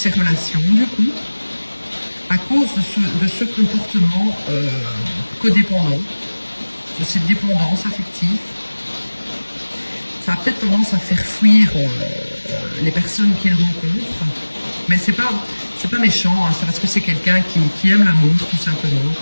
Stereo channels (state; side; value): inverted; both; correlation -1.00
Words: relations, du coup, à cause de ce comportement codépendant, de cette dépendance affective. Ça a peut-être tendance à faire fuir les personnes qu'il rencontre, mais c'est pas méchant, hein, c'est parce que c'est quelqu'un qui aime l'amour, tout simplement.